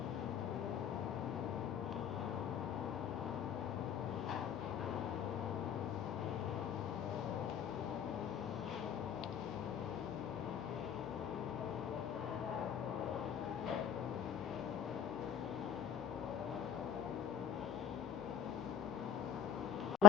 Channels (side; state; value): right; quieter; 7.8 dB